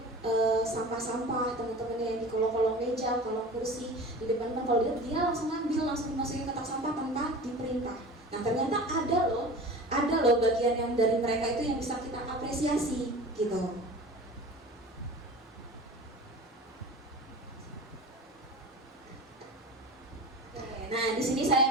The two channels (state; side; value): normal; both; correlation 0.37